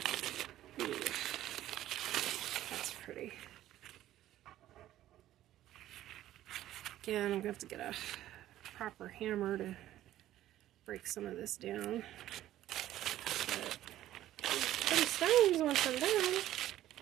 ooh, that's pretty. Again, I'm going to have to get a proper hammer to break some of this down. But pretty stones once I'm done.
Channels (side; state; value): left; quieter; 13.5 dB